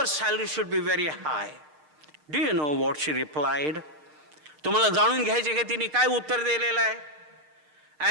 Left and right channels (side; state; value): left; late; 6.6 ms